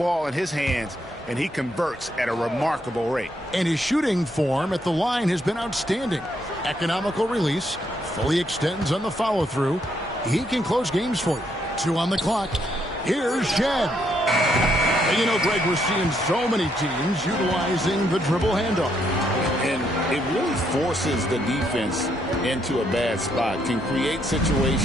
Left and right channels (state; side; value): normal; both; correlation 0.74